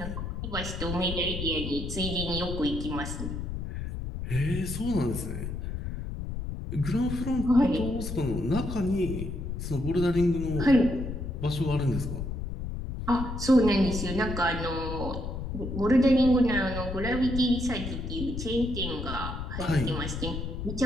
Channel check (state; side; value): noise; left; rumble, 5 dB below the sound